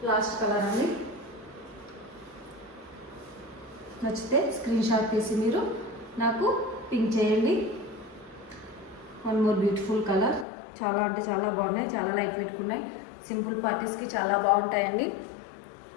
లాస్ట్ కలర్ అండి. నచ్చితే స్క్రీన్ షాట్ తీసి మీరు నాకు పింక్ చేయండి. One more beautiful colour. చాలా అంటే చాలా బాగున్నాయి, చాలా లైట్ వెయిట్ ఉన్నాయి. సింపుల్ పార్టీస్కి చాలా బాగుంటాయండి.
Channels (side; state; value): right; drops out; at 10.5 s